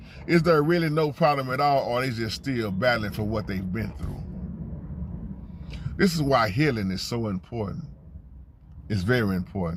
Is there really no problem at all, or are they just still battling for what they've been through? This is why healing is so important. It's very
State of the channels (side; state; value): both; identical; correlation 1.00